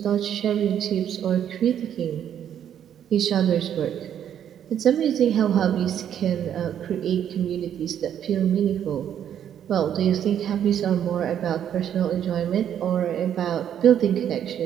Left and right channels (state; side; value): quieter; left; 9.6 dB